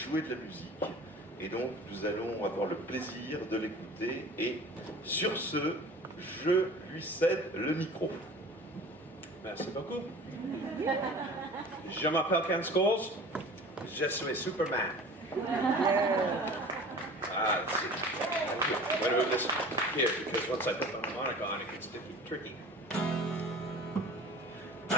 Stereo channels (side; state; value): both; normal; correlation 0.42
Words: de la musique. Et donc, nous allons avoir le plaisir de l'écouter. Et sur ce, je lui cède le micro. Merci beaucoup. Je m'appelle Ken Scholes. Je suis Superman. Let's see. I'm going to move this here because once I put the harmonica on, it gets tricky.